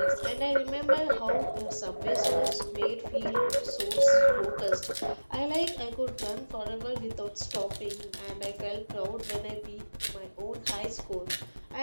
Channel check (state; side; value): inverted; both; correlation -1.00